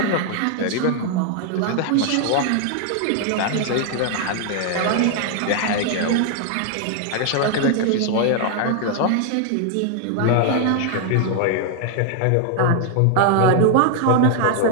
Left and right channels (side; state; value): both; different; correlation 0.00